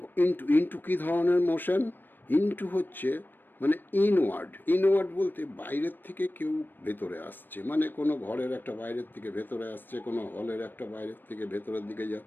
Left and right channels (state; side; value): late; right; 0.093 ms